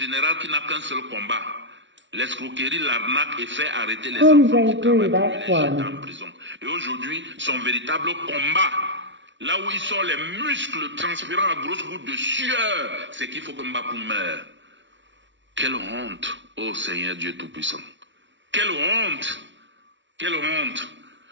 qui n'a qu'un seul combat. L'escroquerie, l'arnaque et fait arrêter les enfants qui travaillent pour les jeter en prison. Et aujourd'hui, son véritable combat, là où il sort les muscles transpirant à grosses gouttes de sueur, c'est qu'il faut que Mbapou meure. Quelle honte, ô Seigneur Dieu Tout-Puissant. Quelle honte. Quelle honte.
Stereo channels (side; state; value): left; late; 0.54 ms